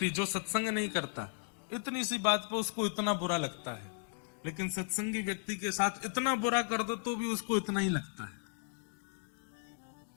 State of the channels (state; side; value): silent; right; 54 dB below the other